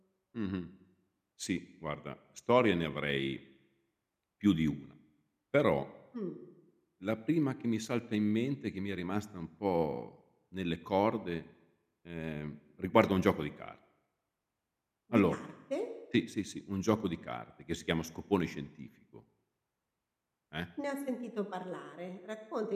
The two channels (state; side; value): identical; both; correlation 1.00